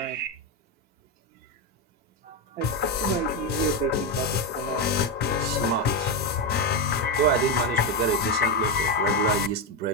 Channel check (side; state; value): both; normal; correlation 0.08